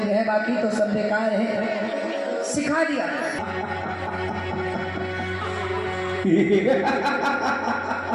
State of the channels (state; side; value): identical; both; correlation 1.00